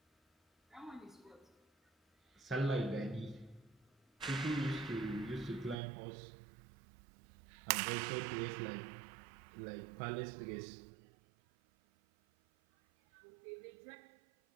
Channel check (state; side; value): drops out; left; at 5.8 s